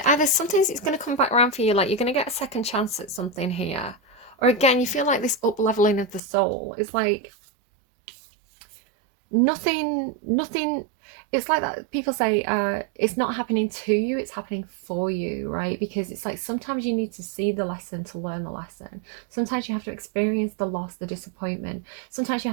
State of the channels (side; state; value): left; drops out; at 6.2 s